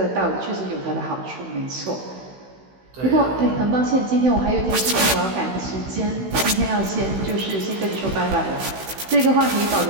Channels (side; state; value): left; late; 16 ms